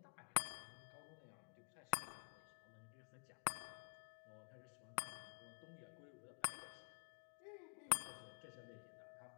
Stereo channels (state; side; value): silent; right; digital silence